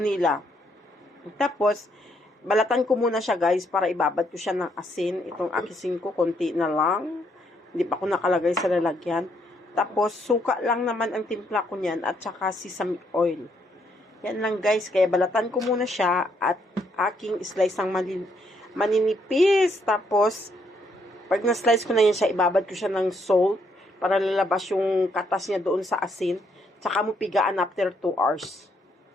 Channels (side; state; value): both; normal; correlation 0.73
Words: Tapos, balatan ko muna siya guys para ibabad ko siya ng asin. Itong asin ko, konti na lang. Hindi pa ko nakalagay sa lalagyan. Tapos, suka lang naman ang timpla ko niyan at saka sesame oil. Yan lang guys. Kaya balatan ko muna siya at aking slice ng maninipis. Tapos, pag na-slice ko na yan siya, ibabad ko siya ng salt para lalabas yung katas niya doon sa asin. Tsaka mo pigaan after 2 hours.